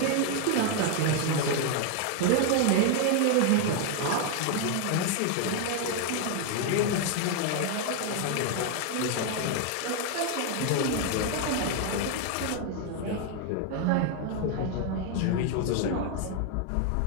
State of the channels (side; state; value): both; different; correlation 0.01